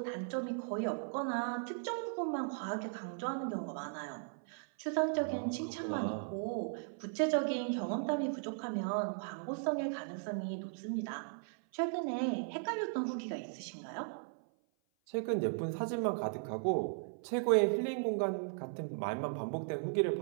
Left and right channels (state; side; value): silent; left; 53 dB below the other